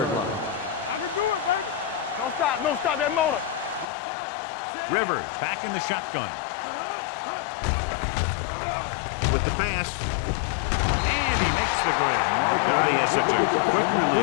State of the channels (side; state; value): right; drops out; at 3.9 s